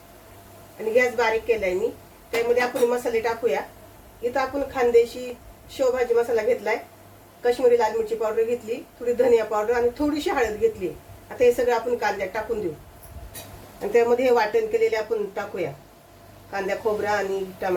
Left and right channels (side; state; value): both; identical; correlation 1.00